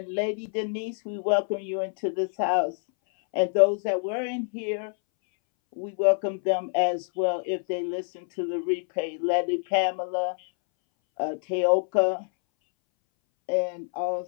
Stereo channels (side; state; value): right; silent; 61 dB below the other